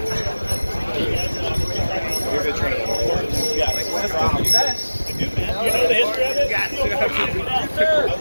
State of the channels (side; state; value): both; inverted; correlation -1.00